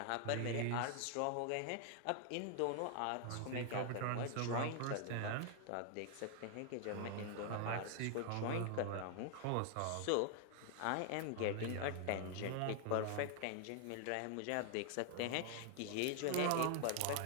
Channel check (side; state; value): both; different; correlation 0.00